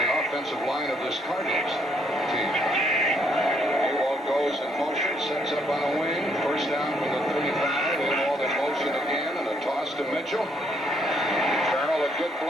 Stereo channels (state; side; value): normal; both; correlation 0.70